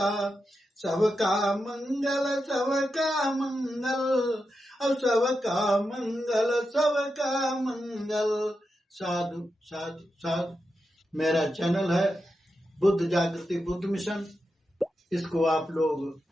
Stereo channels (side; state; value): both; normal; correlation 0.88